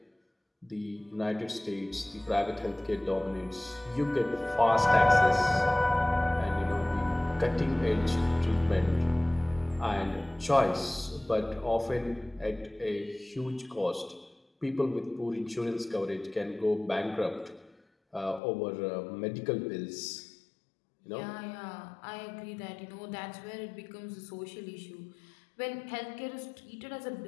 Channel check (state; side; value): drops out; right; at 18.4 s